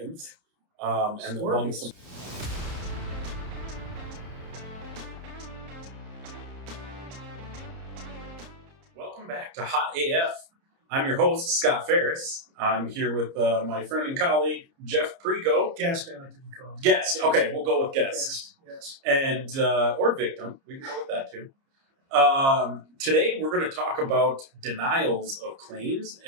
And among some. Welcome back to Hot AF. I'm your host, Scott Ferris. I'm here with my friend and colleague, Jeff Pricco. Guest, I like to be called. Guest. Okay, we'll go with guest. Yes. And or victim. We can go with that too. Today we're going to talk about denials of claims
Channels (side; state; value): left; late; 30 ms